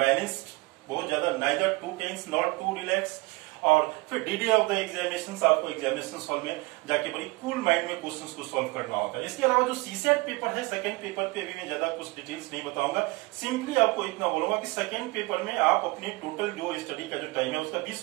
बहुत ज्यादा neither too tense not too relax. और फिर डीडी ऑफ द एग्जामिनेशन, आपको एग्जामिनेशन हॉल में जाके बड़ी कूल माइंड में क्वेश्चंस को सॉल्व करना होता है। इसके अलावा जो सीसेट पेपर है, सेकंड पेपर पे अभी मैं ज्यादा कुछ डिटेल्स नहीं बताऊंगा, सिंपली आपको इतना बोलूंगा कि सेकंड पेपर में आप अपने टोटल जो स्टडी का जो टाइम है उसका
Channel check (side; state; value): left; quieter; 23.6 dB